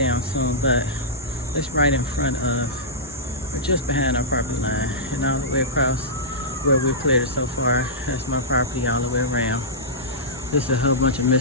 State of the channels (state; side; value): normal; both; correlation -0.14